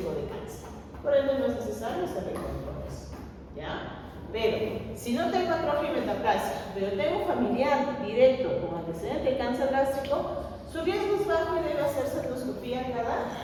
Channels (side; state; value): both; identical; correlation 1.00